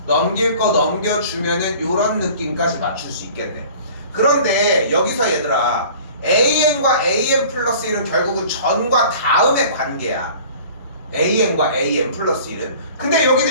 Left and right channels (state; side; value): inverted; both; correlation -0.46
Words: 넘길 거 넘겨주면은 요런 느낌까지 맞출 수 있겠네. 그런데 여기서 얘들아, an과 an 플러스 1은 결국은 전과 다음의 관계야. an과 an 플러스 1은. 근데 여긴